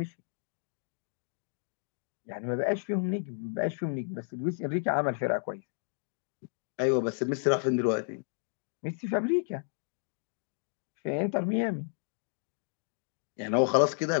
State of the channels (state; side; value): silent; right; digital silence